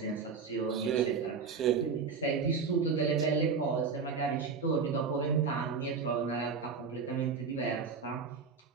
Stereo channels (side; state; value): left; quieter; 5.4 dB